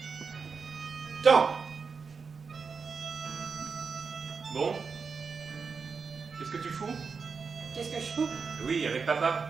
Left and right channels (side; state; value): left; quieter; 5.2 dB